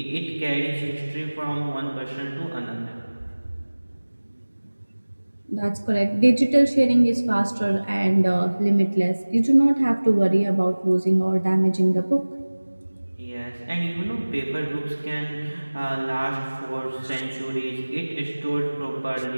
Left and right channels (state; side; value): inverted; both; correlation -1.00